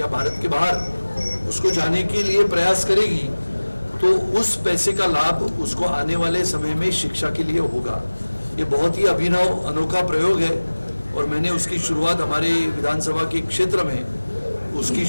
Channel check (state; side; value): inverted; both; correlation -1.00